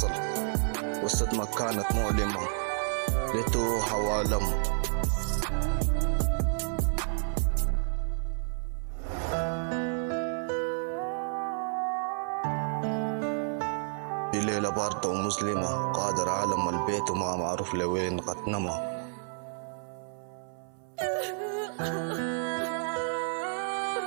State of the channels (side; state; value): left; silent; 55 dB below the other